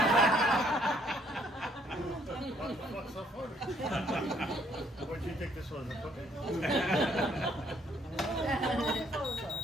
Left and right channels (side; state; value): both; normal; correlation 0.66